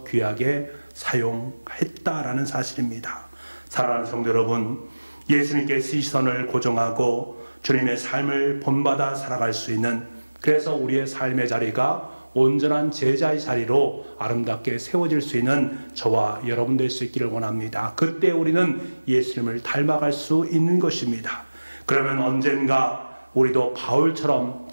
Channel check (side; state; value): both; inverted; correlation -1.00